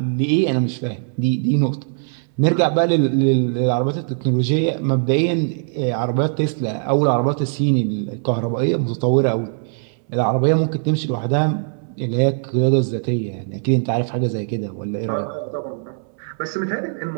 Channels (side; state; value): left; silent; 65 dB below the other